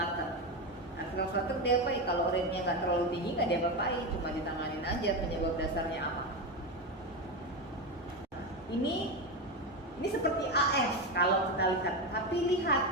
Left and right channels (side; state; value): both; normal; correlation 0.15